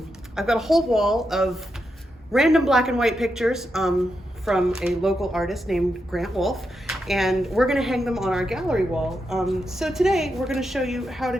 got a whole wall of random black and white pictures from a local artist named Grant Wolf, and we're going to hang them on our gallery wall. So today we're going to show you how to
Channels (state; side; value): normal; both; correlation 0.85